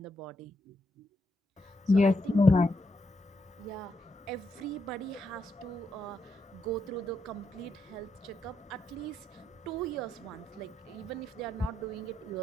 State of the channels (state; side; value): normal; both; correlation 0.81